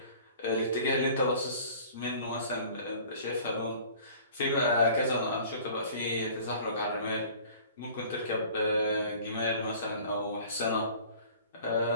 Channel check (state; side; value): inverted; both; correlation -0.47